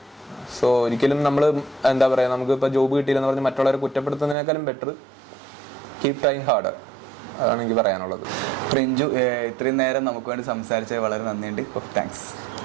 സോ ഒരിക്കലും നമ്മൾ എന്താ പറയുക, നമുക്കിപ്പോൾ ജോബ് കിട്ടിയില്ലെന്ന് പറഞ്ഞ് മറ്റുള്ളവരെ കുറ്റപ്പെടുത്തുന്നതിനേക്കാളും ബെറ്റർ കീപ് ട്രൈങ് ഹാർഡർ. അതാണ് എനിക്ക് പറയാനുള്ളത്. റിഞ്ചു ഇത്രയും നേരം നമുക്ക് വേണ്ടി സംസാരിച്ചത് വളരെ നന്ദിയുണ്ട്. താങ്ക്സ്.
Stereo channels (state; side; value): drops out; left; at 4.4 s